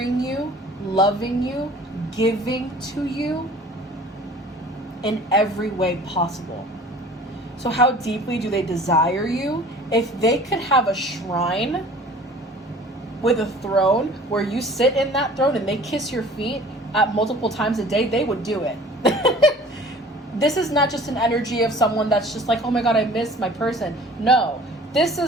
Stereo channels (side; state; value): both; normal; correlation 0.47